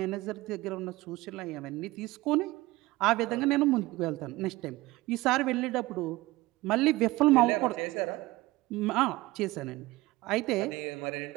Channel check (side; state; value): left; quieter; 19.6 dB